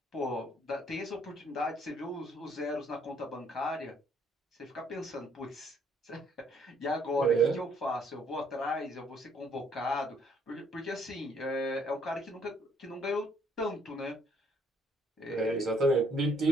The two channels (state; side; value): normal; both; correlation 0.66